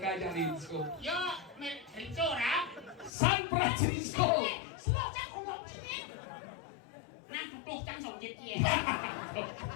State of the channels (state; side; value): drops out; right; at 3.1 s